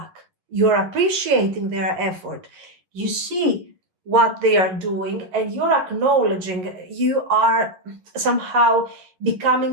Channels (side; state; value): left; late; 11 ms